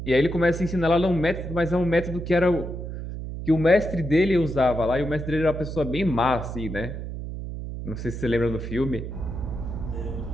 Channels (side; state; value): right; noise; hum, 7 dB below the sound